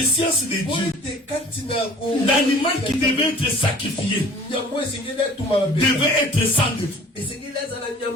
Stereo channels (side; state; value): both; normal; correlation 0.48